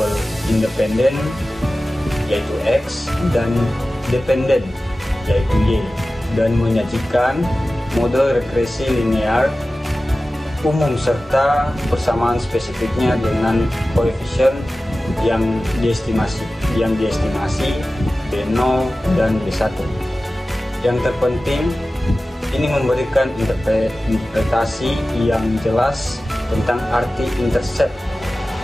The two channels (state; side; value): normal; both; correlation 0.96